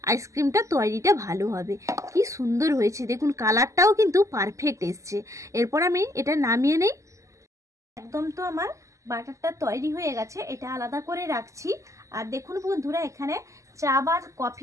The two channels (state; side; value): late; left; 0.15 ms